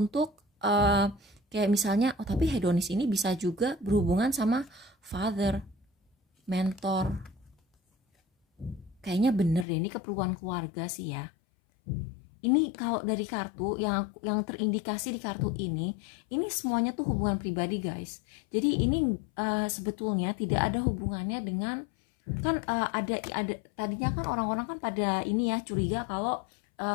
kayak misalnya, oh tapi hedonis ini bisa juga berhubungan sama father, mentor. Kayaknya bener deh, ini keperluan keluarga sih ya. Ini kalau dari kartu yang terindikasi di kartu ini semuanya tuh hubungan pribadi guys. Jadi ini sebetulnya tidak ada hubungannya dengan kan ada tadinya kan orang-orang kan pada ini ya curiga kalau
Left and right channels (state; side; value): drops out; right; at 9.7 s